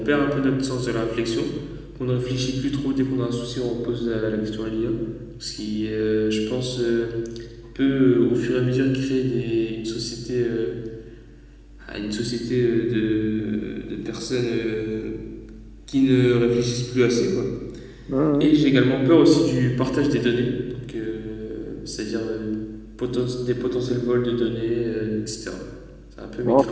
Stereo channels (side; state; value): both; identical; correlation 1.00